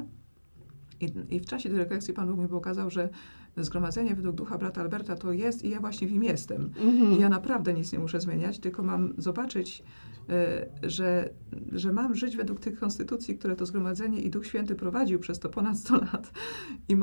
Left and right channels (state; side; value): inverted; both; correlation -1.00